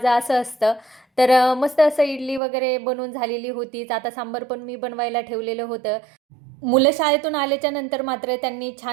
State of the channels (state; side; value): drops out; left; at 2.4 s